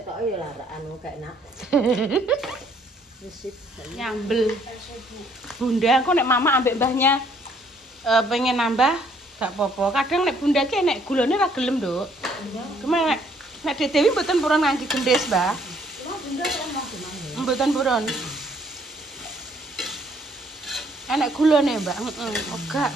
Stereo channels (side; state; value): both; normal; correlation 0.64